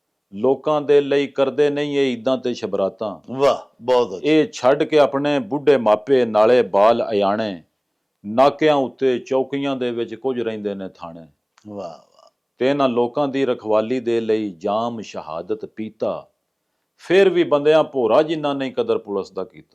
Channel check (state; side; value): identical; both; correlation 1.00